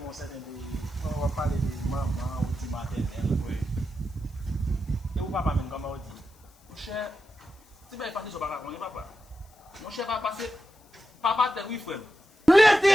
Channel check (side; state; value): left; noise; hiss, 30 dB below the sound